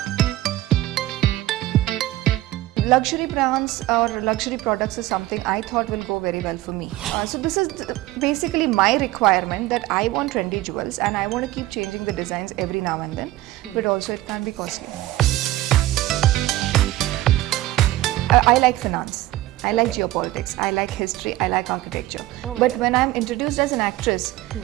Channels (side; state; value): left; quieter; 16.3 dB